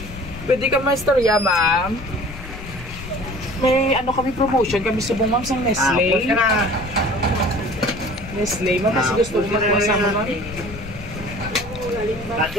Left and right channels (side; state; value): left; noise; rumble, 13 dB below the sound